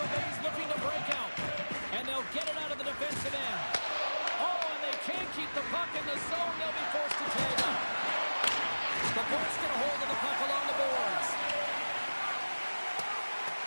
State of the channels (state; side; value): inverted; both; correlation -1.00